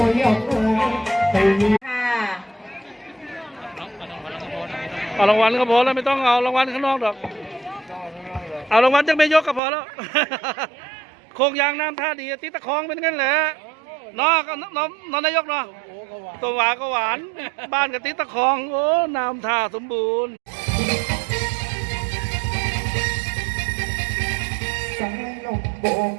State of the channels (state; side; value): drops out; left; at 9.6 s